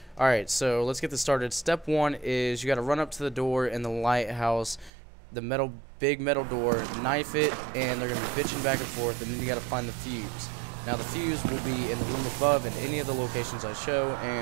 Alright, so let's get this started. Step 1 is you got to run up to the door in the lighthouse, the big metal door, knife it, and they're going to be bitching back and forth, and then you got to find the fuse. Now the fuse will be in the room above in any of the locations I show,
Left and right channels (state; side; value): drops out; left; at 4.9 s